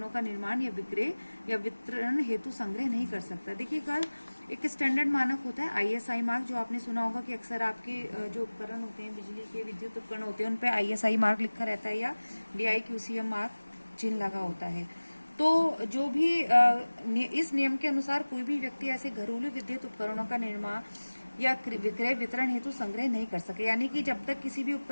का निर्माण या विक्रय या वितरण हेतु संग्रह नहीं कर सकता। देखिए कल एक स्टैंडर्ड मानक होता है ISI मार्क, जो आपने सुना होगा कि अक्सर आपके जो उपकरण होते हैं, बिजली के विद्युत उपकरण होते हैं, उन पे ISI मार्क लिखा रहता है या DIQCM मार्क चिन्ह लगा होता है। तो जो भी इस नियम के अनुसार कोई भी व्यक्ति ऐसे घरेलू विद्युत उपकरणों का निर्माण या विक्रय वितरण हेतु संग्रह नहीं कर सके, यानी कि जब तक किसी भी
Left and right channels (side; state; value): both; inverted; correlation -1.00